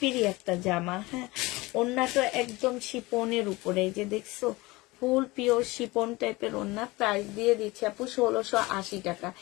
একটা জামা। হ্যাঁ, ওড়নাটা একদম শিপনের উপরে, এই যে দেখছো ফুল পিওর শিপন টাইপের ওড়না। প্রাইস দিয়ে দিচ্ছি আপু 1680 টাকা।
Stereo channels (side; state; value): right; quieter; 21.8 dB